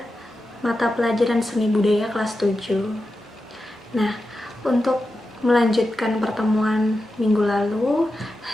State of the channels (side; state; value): both; normal; correlation 0.91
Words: mata pelajaran seni budaya kelas 7. Nah, untuk melanjutkan pertemuan minggu lalu,